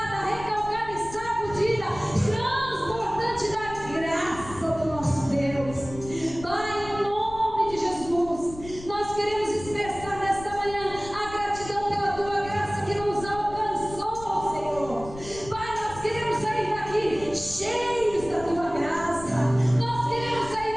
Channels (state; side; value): noise; left; rumble, 14 dB below the sound